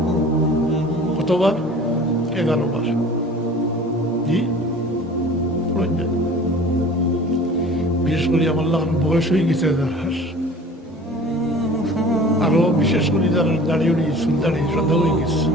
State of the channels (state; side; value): normal; both; correlation 0.44